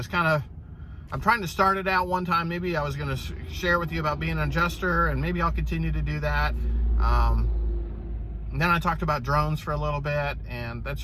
kind of, I'm trying to start it out one time. Maybe I was going to share with you about being an adjuster, and maybe I'll continue to do that. And then I talked about drones for a little bit, and that's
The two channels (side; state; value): both; identical; correlation 1.00